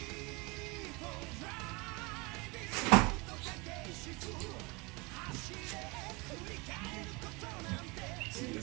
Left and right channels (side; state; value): left; quieter; 26.6 dB